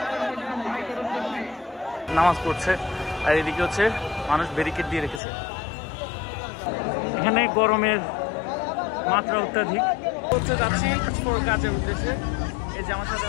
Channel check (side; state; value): right; drops out; at 5.2 s